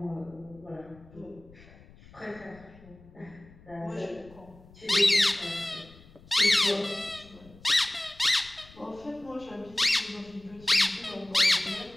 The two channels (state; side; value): noise; left; rumble, 23 dB below the sound